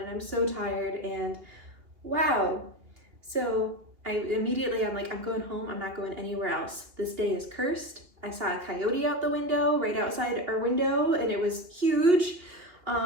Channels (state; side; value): late; left; 2.8 ms